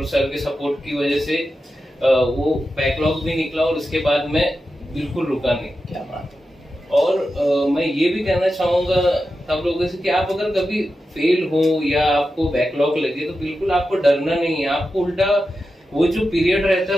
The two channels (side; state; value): both; normal; correlation 0.90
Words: सर के सपोर्ट की वजह से वो बैकलॉग भी निकला और उसके बाद मैं बिल्कुल रुका नहीं। क्या बात। और मैं ये भी कहना चाहूंगा सब लोगों से कि आप अगर कभी फेल हो या आपको बैकलॉग लगे तो बिल्कुल आपको डरना नहीं है। आपको उल्टा वो जो पीरियड रहता है